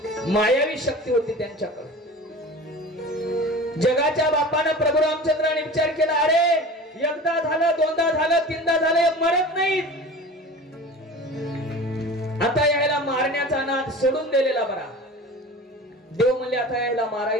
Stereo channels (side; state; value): both; normal; correlation 0.37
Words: मायावी शक्ती होती त्यांच्याकडे. जगाच्या बापानं प्रभू रामचंद्राने विचार केला, अरे एकदा झालं, दोनदा झालं, तीनदा झालं, मरत नाहीत. आता यायला मारण्याचा नाद सोडून दिलेला बरा. देव म्हणले आता यायला